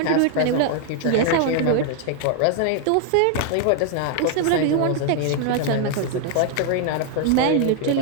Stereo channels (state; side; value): different; both; correlation 0.00